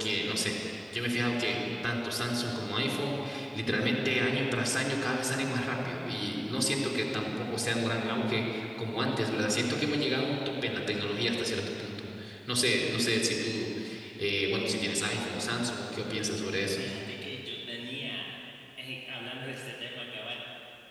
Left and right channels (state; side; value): identical; both; correlation 1.00